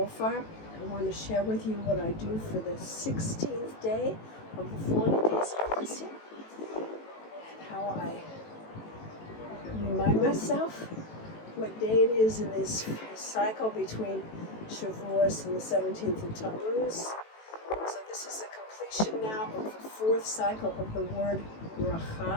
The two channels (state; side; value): late; right; 18 ms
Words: I want to share with you what I do for the 16th day of the 40 days of blessing, and how I remind myself what day it is in this cycle between Shavuos and the 17th of Tammuz. So this is the completion now of the fourth cycle of the word